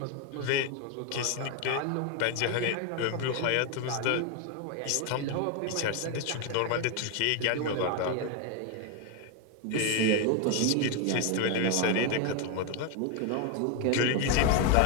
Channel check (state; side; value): different; both; correlation 0.01